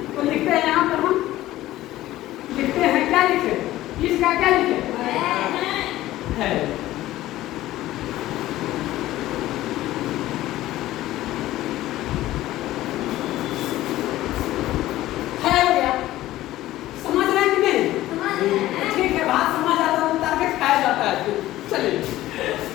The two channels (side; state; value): right; quieter; 15.5 dB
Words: तो लिखते हैं यहाँ पर, हम लिखते हैं, क्या लिखे, इसका क्या लिखे है, हो गया। समझ रहे हैं कि नहीं, ठीक है, बात समझ आता है, उतार के खाया जाता है। चलिए,